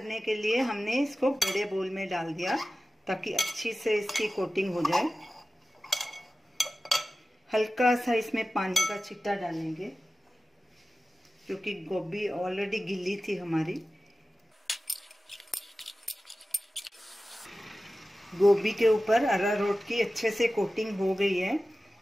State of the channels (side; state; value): both; normal; correlation 0.95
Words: के लिए हमने इसको बड़े बोल में डाल दिया ताकि अच्छी से इसकी कोटिंग हो जाए। हल्का सा इसमें पानी का छिट्टा डालेंगे क्योंकि गोभी ऑलरेडी गीली थी हमारी। गोभी के ऊपर अरारोट की अच्छे से कोटिंग हो गई है।